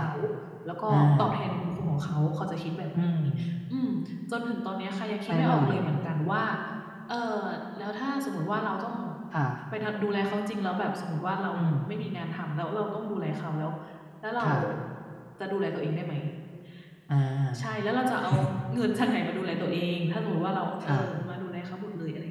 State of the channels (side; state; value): both; identical; correlation 1.00